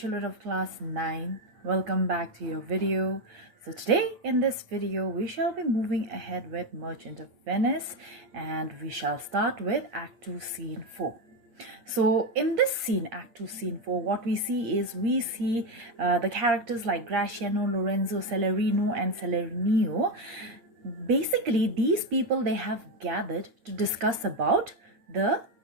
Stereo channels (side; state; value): left; late; 8.6 ms